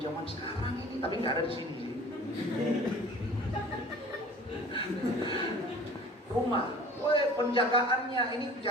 zaman sekarang ini, tapi nggak ada di sini. Rumah, penjagaannya ini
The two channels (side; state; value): both; normal; correlation 0.45